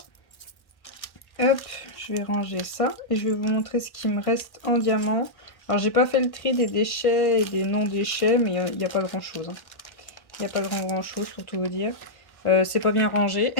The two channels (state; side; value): late; right; 1.1 ms